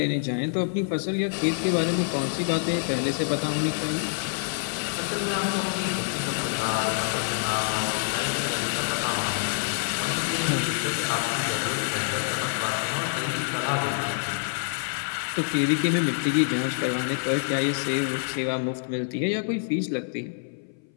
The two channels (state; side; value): silent; right; 58 dB below the other